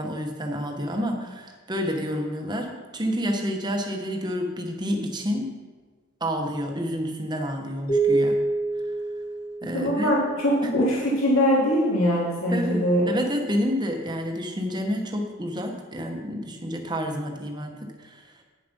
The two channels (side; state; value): both; normal; correlation 0.59